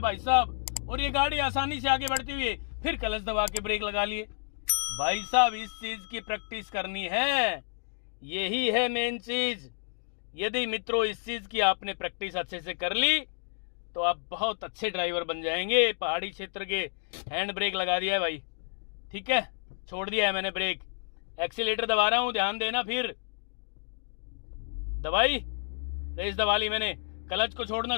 साहब, और ये गाड़ी आसानी से आगे बढ़ती हुई फिर क्लच दबा के ब्रेक लगा लिए। भाई साहब इस चीज की प्रैक्टिस करनी है, यही है मेन चीज। यदि मित्रों इस चीज की आपने प्रैक्टिस अच्छे से कर ली तो आप बहुत अच्छे ड्राइवर बन जाएंगे। पहाड़ी क्षेत्र के हैंड ब्रेक लगा दिया है भाई, ठीक है, छोड़ दिया है मैंने ब्रेक, एक्सीलेटर दबा रहा हूं, ध्यान देना। फिर दबाई, रेस दबा ली मैंने, क्लच को छोड़ना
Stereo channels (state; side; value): silent; right; digital silence